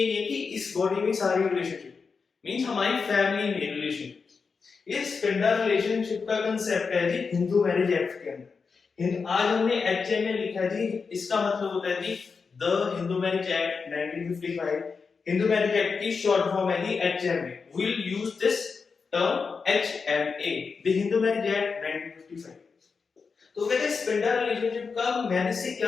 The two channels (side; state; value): right; quieter; 5.1 dB